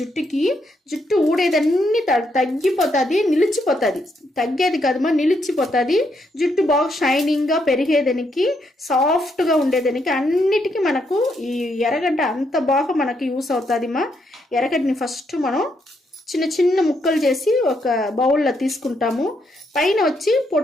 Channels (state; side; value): normal; both; correlation 0.77